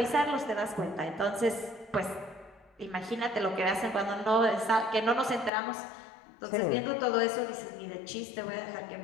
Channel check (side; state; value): right; drops out; at 5.5 s